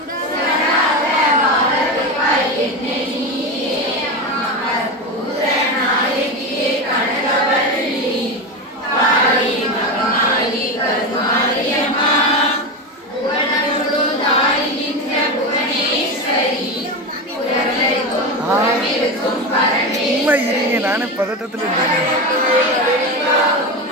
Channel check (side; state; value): both; normal; correlation 0.18